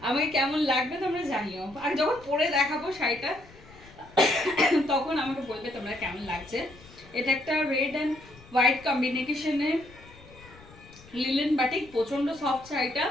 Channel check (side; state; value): left; noise; rumble, 22 dB below the sound